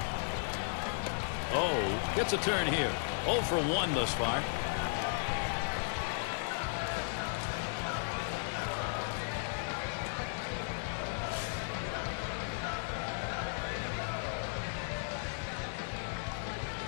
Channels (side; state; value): right; silent; digital silence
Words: Oh, gets a turn here. 0 for 1 thus far.